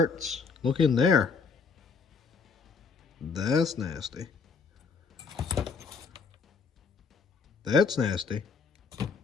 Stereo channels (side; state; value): right; quieter; 5.1 dB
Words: Look in there. That's nasty. That's nasty.